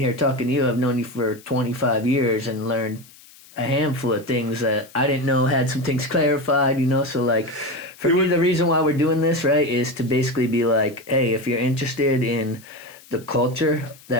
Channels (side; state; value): left; noise; hiss, 23 dB below the sound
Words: here talking to you. I've known you for 25 years and learned a handful of things that I didn't know, had some things clarified, So for me, the reason why we're doing this, right, is to basically be like, hey, if you're interested in the culture